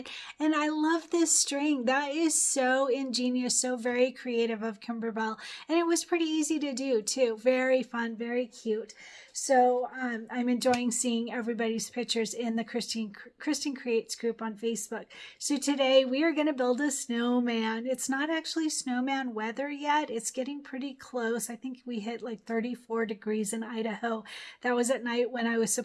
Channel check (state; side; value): identical; both; correlation 1.00